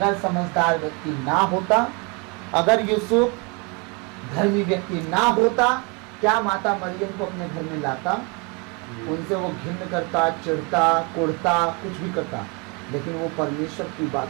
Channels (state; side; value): quieter; left; 31.3 dB